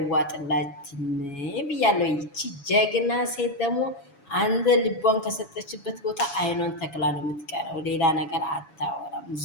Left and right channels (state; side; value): late; right; 7.1 ms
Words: ብያለሁ። ይቺ ጀግና ሴት ደግሞ አንተ ልቧን ከሰጠችበት ቦታ አይኗን ተክላ ነው የምትቀረው። ሌላ ነገር አታወራም።